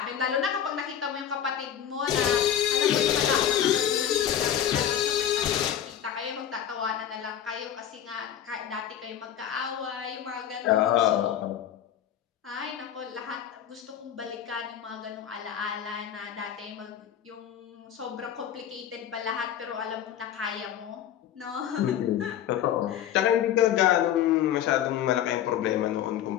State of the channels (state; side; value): quieter; right; 10.1 dB